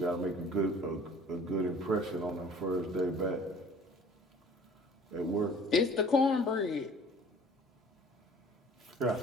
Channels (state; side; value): normal; both; correlation 0.50